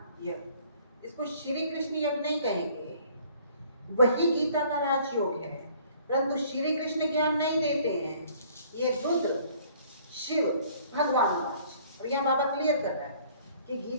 यज्ञ। इसको श्री कृष्ण यज्ञ नहीं कहेंगे, वही गीता का राजयोग है, परंतु श्री कृष्ण ज्ञान नहीं देते हैं। ये रुद्र शिव भगवान राज। और यहाँ बाबा क्लियर कर रहा है कि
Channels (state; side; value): inverted; both; correlation -0.56